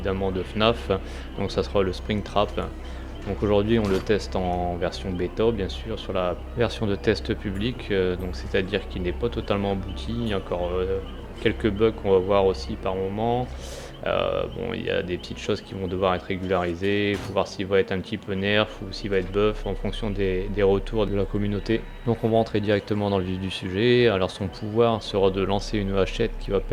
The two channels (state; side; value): identical; both; correlation 1.00